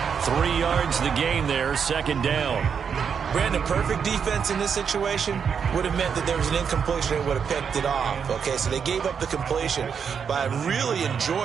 3 yards the gain there, 2nd down. Brandon, perfect defense in this situation would have meant that there was an incompletion that would have picked it off. Okay, so they gave up the completion. But I really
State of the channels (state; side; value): quieter; left; 6.9 dB